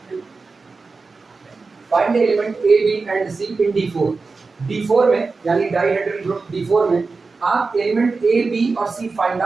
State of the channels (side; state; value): left; quieter; 4.2 dB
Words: Find the element A B and C in D4। D4 में यानी डाइहेड्रल ग्रुप D4 में आप एलिमेंट ए बी और सी फाइंड